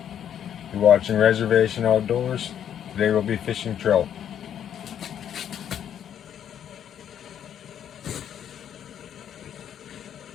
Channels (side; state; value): right; quieter; 9.5 dB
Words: You're watching Reservation Outdoors. Today we'll be fishing trout.